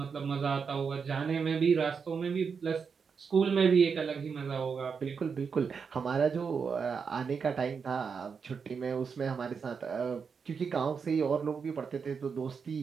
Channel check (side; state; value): left; quieter; 5.9 dB